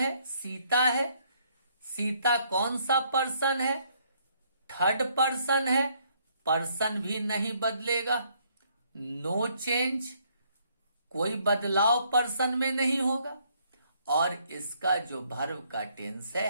सीता है। सीता कौन सा पर्सन है? थर्ड पर्सन है। पर्सन भी नहीं बदलेगा, नो चेंज, कोई बदलाव पर्सन में नहीं होगा। और इसका जो वर्ब का टेंस है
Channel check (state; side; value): inverted; both; correlation -0.68